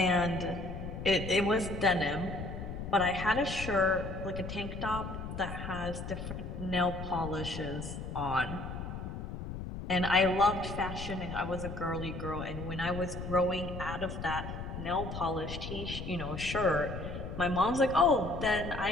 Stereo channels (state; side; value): noise; left; rumble, 7 dB below the sound